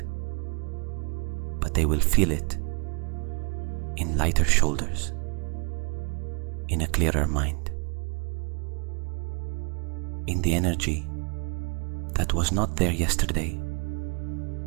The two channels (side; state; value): left; quieter; 35.3 dB